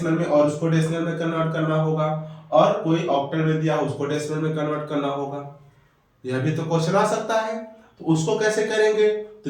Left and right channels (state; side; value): identical; both; correlation 1.00